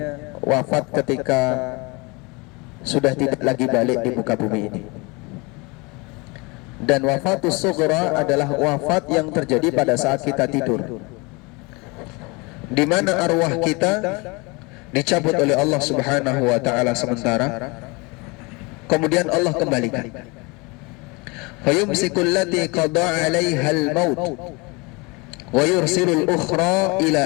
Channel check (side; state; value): right; quieter; 27.3 dB